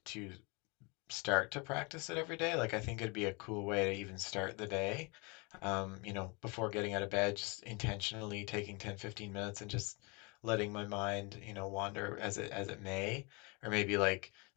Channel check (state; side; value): quieter; right; 29.5 dB